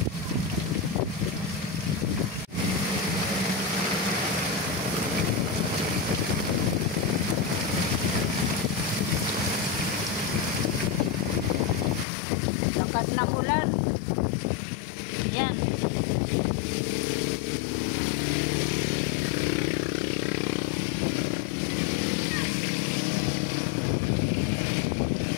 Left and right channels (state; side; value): drops out; right; at 12.1 s